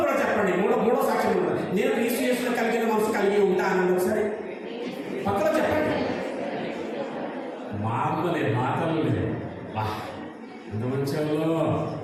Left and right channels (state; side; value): identical; both; correlation 1.00